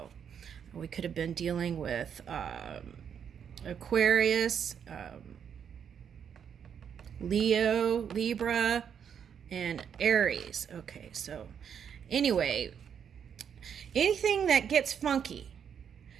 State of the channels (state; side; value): quieter; left; 7.9 dB